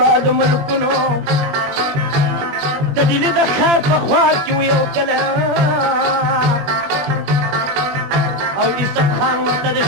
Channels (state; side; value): late; left; 21 ms